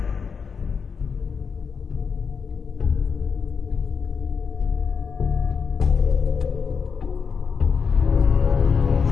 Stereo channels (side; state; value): right; quieter; 5.9 dB